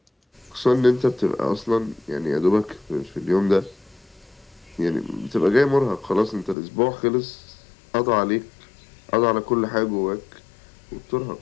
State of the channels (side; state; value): right; drops out; at 6.6 s